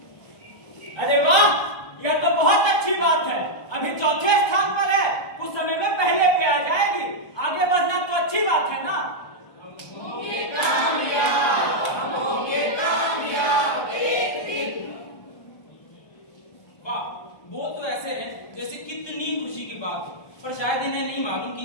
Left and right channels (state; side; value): late; right; 1.2 ms